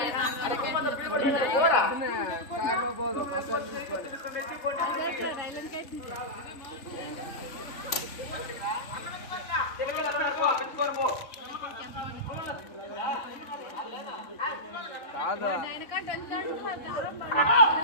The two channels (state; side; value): late; right; 3.3 ms